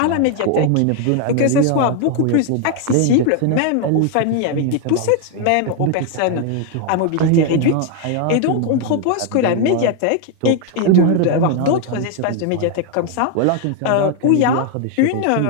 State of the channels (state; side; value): different; both; correlation 0.01